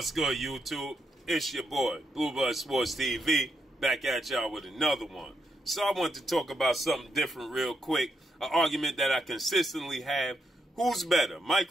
good, YouTube? It's your boy, Bluebird Sports TV, back at y'all with another one. So I want to talk about something different real quick, an argument that I consistently have. Who's better,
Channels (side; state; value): both; normal; correlation 0.80